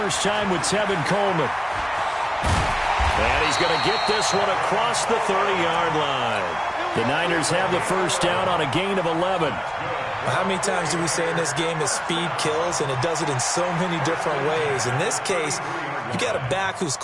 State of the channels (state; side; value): identical; both; correlation 1.00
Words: time with Tevin Coleman. And he's going to get this one across the 30-yard line. The Niners have the first down on a gain of 11. How many times do we say in this game that speed kills, and it does it in so many different ways? In this case, you got a back who's